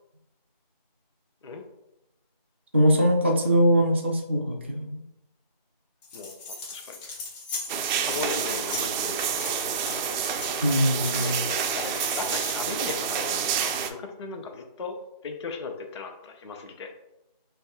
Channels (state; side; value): inverted; both; correlation -0.53